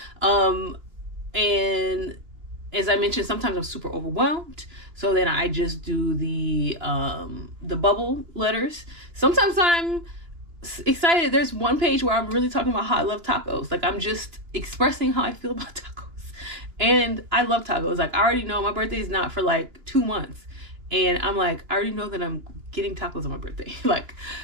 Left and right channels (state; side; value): late; left; 2.9 ms